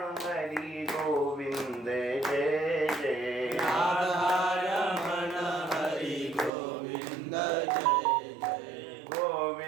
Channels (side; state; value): left; drops out; at 6.5 s